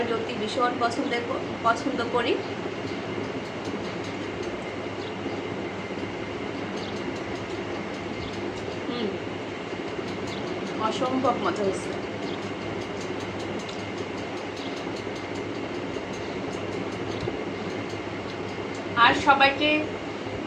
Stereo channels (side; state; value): both; identical; correlation 1.00